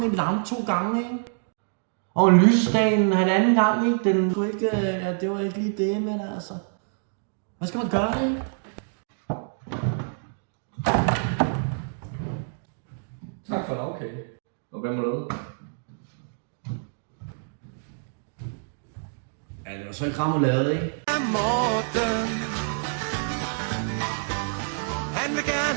en lampe 2 gange, ikke? Og lysdagen 1,5 gang, ikke? Den skulle ikke, ja, det var ikke lige det, men altså. Hvad skal man gøre, ikke? Tak for lavkage. Og hvad med noget? Ja, det var så ikke remoulade, ikke? Morten, han vil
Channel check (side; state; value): left; silent; digital silence